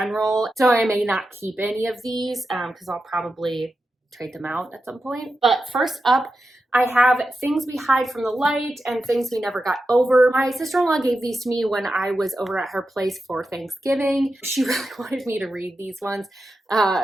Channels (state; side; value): normal; both; correlation 0.90